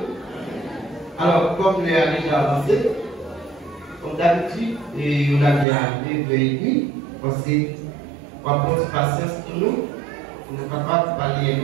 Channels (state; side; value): drops out; left; at 5.7 s